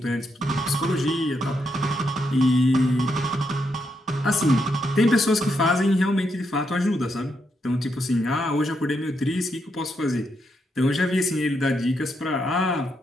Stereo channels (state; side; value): normal; both; correlation 0.80